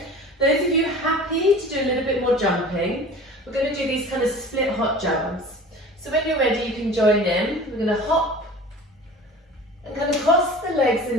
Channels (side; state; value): both; normal; correlation 0.40